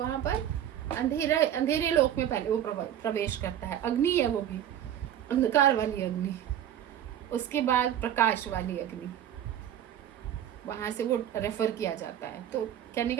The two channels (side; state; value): left; quieter; 10.6 dB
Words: पर अंधेरे लोक में पहले वो प्रवेश करता है, अग्नि है वो भी, अंधकार वाली अग्नि, उसके बाद प्रकाश वाली अग्नि, वहां से वो रेफर किया जाता है। तो कहने